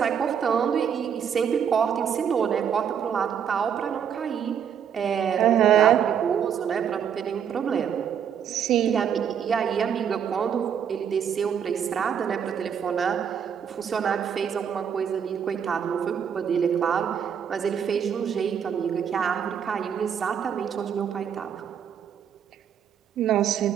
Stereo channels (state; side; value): quieter; left; 8.1 dB